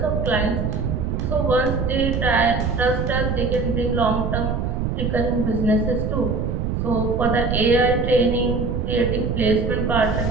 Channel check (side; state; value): right; noise; rumble, 1 dB below the sound